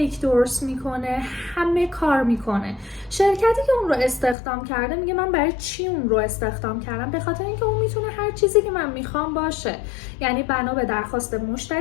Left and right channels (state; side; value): drops out; right; at 4.4 s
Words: درست میکنه، همه کار میکنه. شرکتی که اون رو استخدام کرده میگه من برای چی اون رو استخدام کردم؟ به خاطر اینکه اون میتونه هر چیزی که من میخوام باشه. یعنی بنا به درخواست